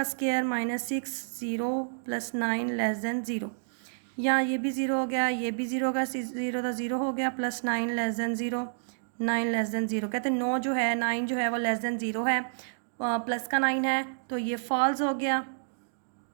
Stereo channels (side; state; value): left; silent; digital silence